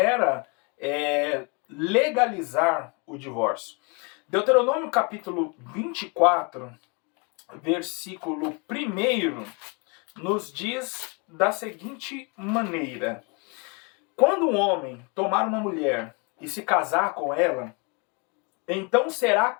legalizar o divórcio. Deuteronômio capítulo 24, versículo 1, nos diz da seguinte maneira: quando um homem tomar uma mulher e se casar com ela, então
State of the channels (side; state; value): right; quieter; 32.5 dB